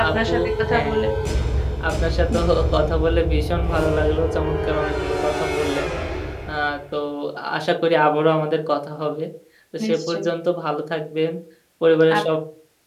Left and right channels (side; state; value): both; identical; correlation 1.00